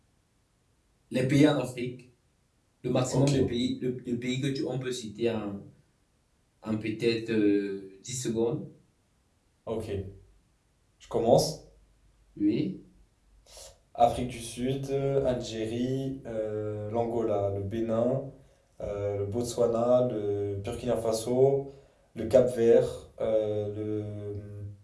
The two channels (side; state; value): both; identical; correlation 1.00